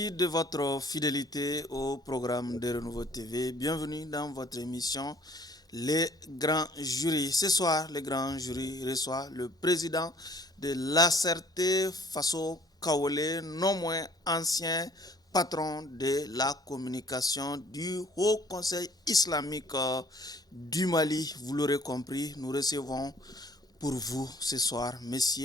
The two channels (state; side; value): normal; both; correlation 0.57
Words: de votre fidélité au programme de Renouveau TV. Bienvenue dans votre émission Les Grands Jurys. Ce soir, les Grands Jurys reçoivent le président de l'ACRT, Faso Kaolé, non moins ancien patron de la communication du Haut Conseil islamique du Mali. Vous l'aurez compris, nous recevons pour vous ce soir,